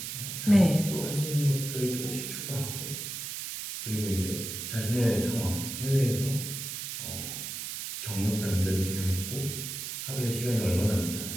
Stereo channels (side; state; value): right; noise; hiss, 6 dB below the sound